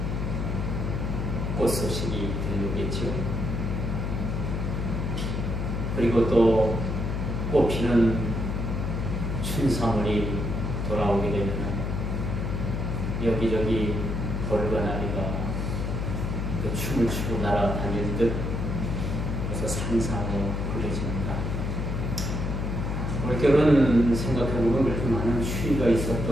꽃 소식이 들려오겠죠. 그리고 또 꽃피는 춘삼월이 돌아오게 되면 여기저기 벌과나리가 춤을 추고 날아다닐 듯 그래서 상상으로 그려집니다. 올겨울은 생각해보면 그렇게 많은 추위가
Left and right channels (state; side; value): noise; left; hum, 1 dB below the sound